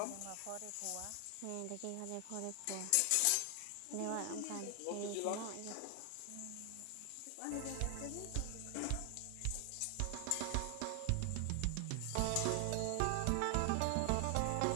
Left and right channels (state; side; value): different; both; correlation 0.00